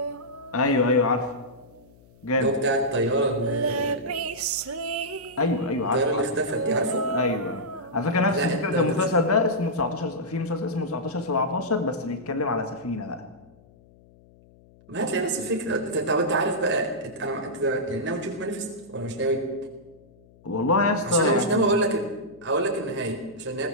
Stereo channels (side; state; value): left; noise; hum, 27 dB below the sound